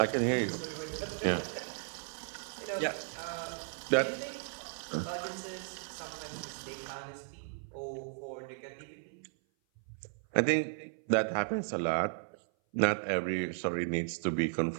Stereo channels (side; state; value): left; silent; 54 dB below the other